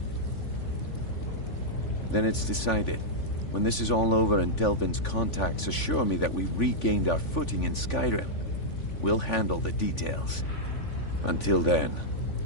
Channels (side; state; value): right; late; 3.5 ms